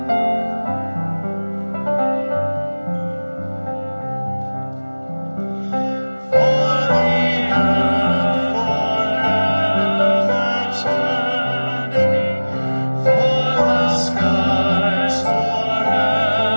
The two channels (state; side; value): inverted; both; correlation -1.00